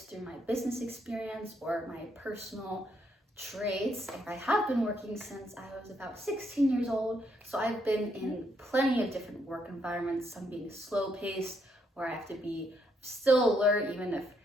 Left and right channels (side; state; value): both; normal; correlation 0.74